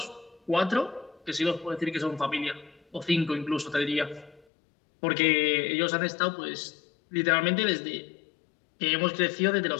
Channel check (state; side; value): drops out; right; at 4.4 s